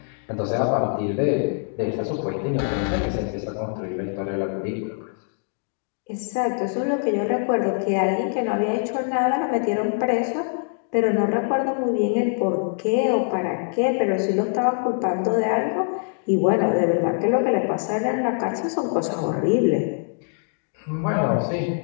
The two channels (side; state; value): right; silent; 63 dB below the other